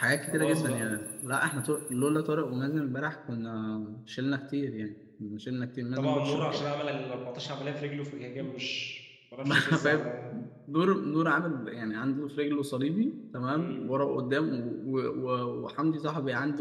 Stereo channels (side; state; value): both; identical; correlation 1.00